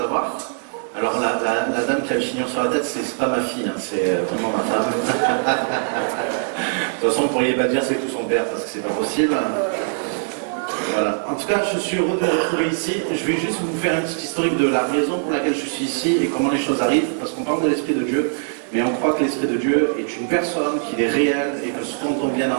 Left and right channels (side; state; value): left; silent; 63 dB below the other